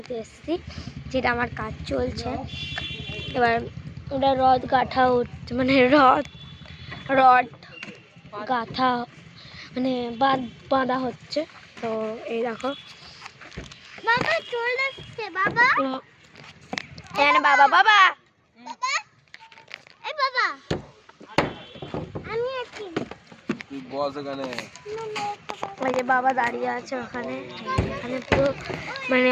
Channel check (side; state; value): both; identical; correlation 1.00